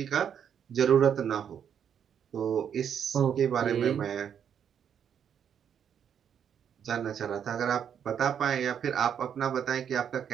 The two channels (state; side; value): quieter; left; 8.4 dB